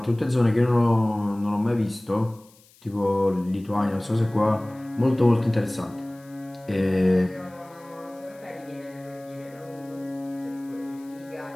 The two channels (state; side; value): noise; left; hiss, 28 dB below the sound